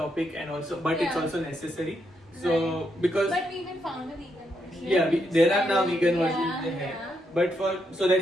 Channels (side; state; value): both; normal; correlation 0.79